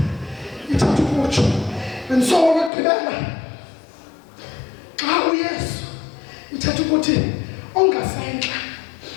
ithatha ukutsho. And so okugqibela, xa uYesu ithatha ukuthi ongasentla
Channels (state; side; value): drops out; right; at 2.7 s